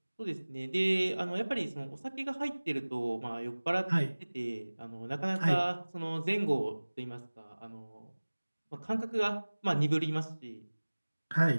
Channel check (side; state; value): both; inverted; correlation -1.00